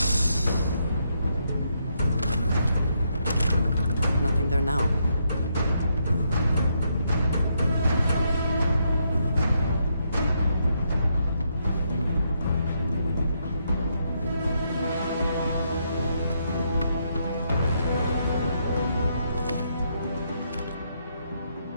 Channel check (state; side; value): inverted; both; correlation -0.77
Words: Nothing there now.